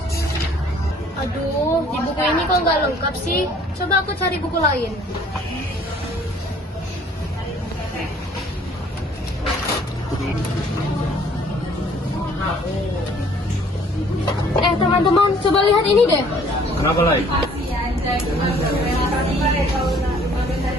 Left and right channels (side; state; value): both; normal; correlation 0.57